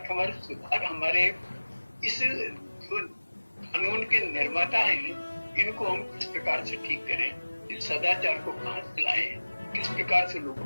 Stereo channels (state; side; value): inverted; both; correlation -1.00